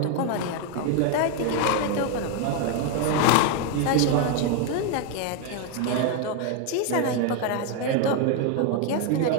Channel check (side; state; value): both; different; correlation 0.01